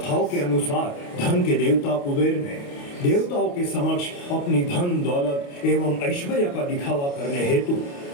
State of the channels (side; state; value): right; late; 28 ms